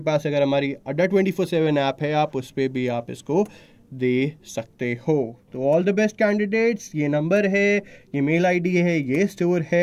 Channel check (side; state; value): both; identical; correlation 1.00